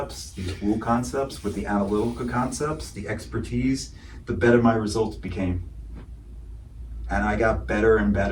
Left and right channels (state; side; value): identical; both; correlation 1.00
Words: these woo concepts, with the analytical concepts, the expertise, the better my results became. And I got better and